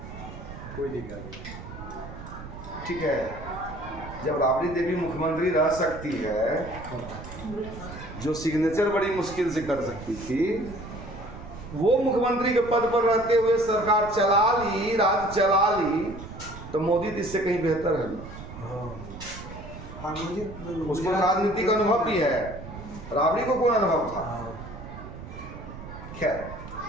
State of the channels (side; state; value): right; noise; rumble, 12 dB below the sound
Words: कोई दिक्कत नहीं। ठीक है, जब राबड़ी देवी मुख्यमंत्री रह सकती है, जो सिग्नेचर बड़ी मुश्किल से कर सकती थी, वो मुख्यमंत्री के पद पर रहते हुए सरकार चला ली, राज्य चला ली, तो मोदी तो इससे कहीं बेहतर है ना। उसको राजनीतिक अनुभव भी है, राबड़ी को कौन अनुभव था? खैर